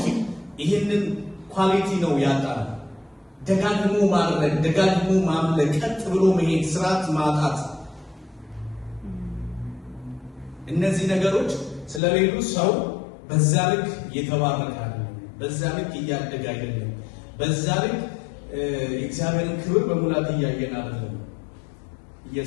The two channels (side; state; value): right; drops out; at 12.0 s